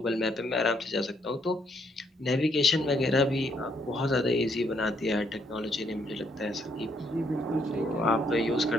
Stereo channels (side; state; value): both; normal; correlation 0.71